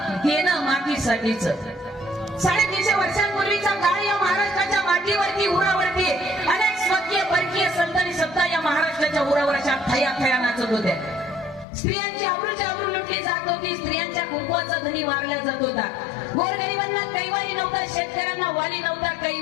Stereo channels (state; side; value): drops out; right; at 11.7 s